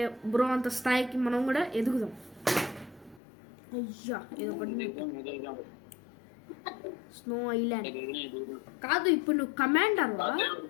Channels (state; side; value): drops out; right; at 3.2 s